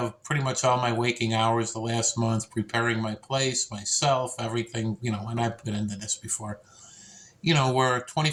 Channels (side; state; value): both; identical; correlation 1.00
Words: pretty much all my waking hours the last month preparing my place, myself, everything, and I've been into this before. We're